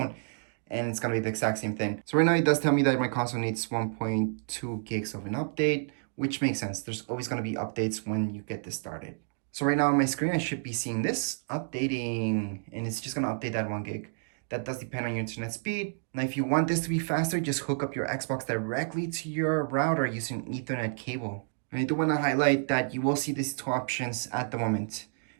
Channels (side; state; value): left; silent; digital silence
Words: And it's gonna be the exact same thing. So right now it does tell me that my console needs 1.2 gigs of an update, which makes sense. There's always gonna be updates when you get this started. So right now on my screen, I should be seeing this updating, and it's just gonna update that 1 gig. That does depend on your internet speed. Now, if you want this to be faster, just hook up your Xbox directly to your router using Ethernet cable. And I do wanna highlight that you will see these two options at the moment.